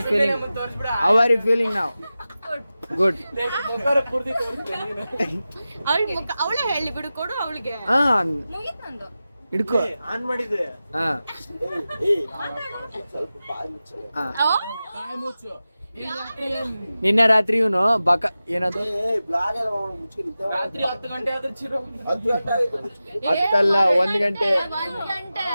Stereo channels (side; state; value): both; inverted; correlation -0.94